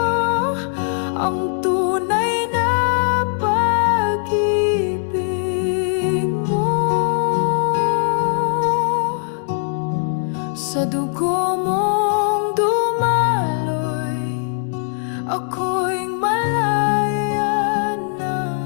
ang tunay na pag-ibig mo. Sa dugo mong dumaloy, ako'y malaya na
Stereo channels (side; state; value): right; silent; digital silence